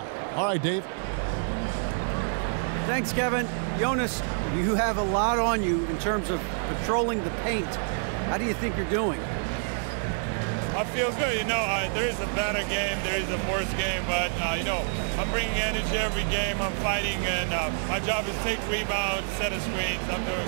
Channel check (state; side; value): silent; left; digital silence